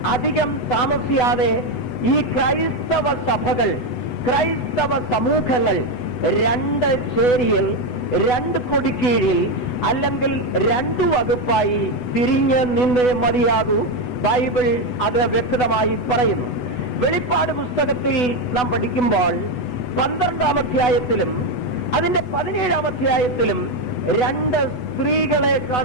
അധികം താമസിയാതെ ഈ ക്രൈസ്തവ സഭകൾ, ക്രൈസ്തവ സമൂഹങ്ങൾ 2 ചേരിയിൽ, 2 കൊടിക്കീഴിൽ, അല്ലെങ്കിൽ 2 വകുപ്പായി തിരിഞ്ഞ് നിന്നേ മതിയാകൂ. ബൈബിൾ അത് വ്യക്തമായി പറയുന്നു. വെളിപ്പാട് പുസ്തകത്തിൽ നാം പഠിക്കുമ്പോൾ 12-ാം അധ്യായത്തിലും അതിന്റെ 17-ാം അധ്യായത്തിലും 2 സ്ത്രീകളെ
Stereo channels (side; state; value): right; late; 8.1 ms